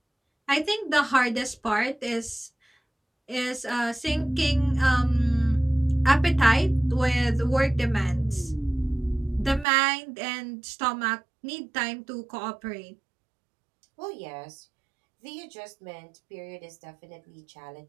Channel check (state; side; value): drops out; left; at 9.7 s